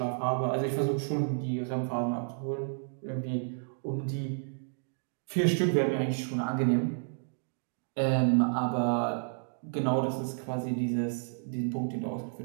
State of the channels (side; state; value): left; silent; digital silence